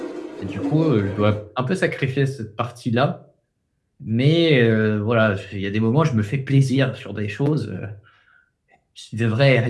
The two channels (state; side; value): identical; both; correlation 1.00